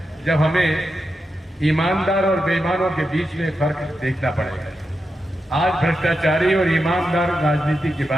जब हमें ईमानदार और बेईमानों के बीच में फर्क देखना पड़ेगा। आज भ्रष्टाचारी और ईमानदार राजनीति के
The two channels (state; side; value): normal; both; correlation 0.88